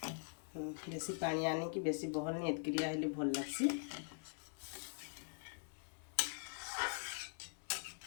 बेसी पानी आने की बेसी बहल नहीं एतक्रिया हेले भल लगसी।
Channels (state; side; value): silent; right; digital silence